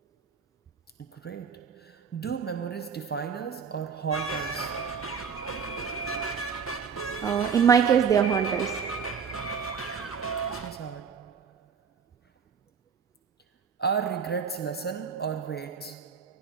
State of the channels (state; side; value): quieter; left; 6.5 dB